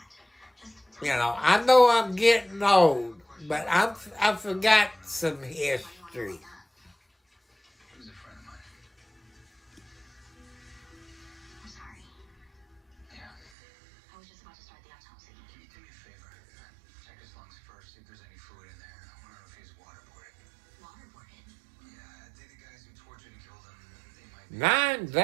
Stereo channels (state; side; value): drops out; left; at 13.5 s